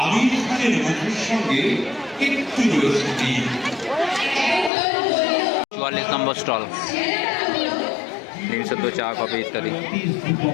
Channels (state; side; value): drops out; right; at 4.7 s